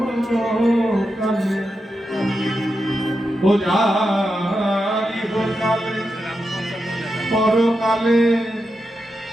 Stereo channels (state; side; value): normal; both; correlation 0.87